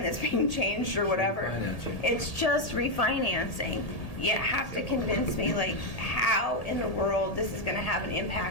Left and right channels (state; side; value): late; right; 1.8 ms